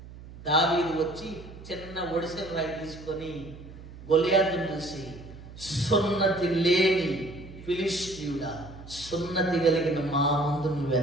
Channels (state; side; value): noise; right; hum, 16 dB below the sound